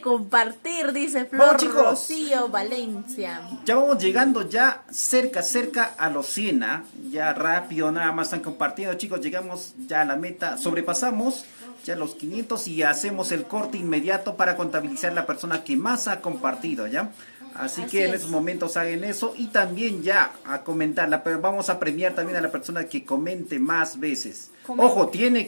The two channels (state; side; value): inverted; both; correlation -1.00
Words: compartir, dice Flor Vamos, chicos. Rocío Valencia. Ya vamos llegando ya cerca a los 100, ¿ah? Ya rápido, nada más están compartiendo, chicos, llegamos ya a la meta, sobrepasamos ya los 500 y hacemos el corte inmediato para contabilizar la persona que más ha compartido, ¿ya? Así que en es. esos momentos hagan eso y también ya a comentarla, pero vamos a premiar también a la persona que comente más veces. Ojo, tiene